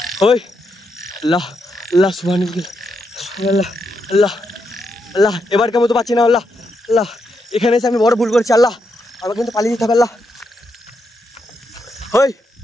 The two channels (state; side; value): normal; both; correlation 0.81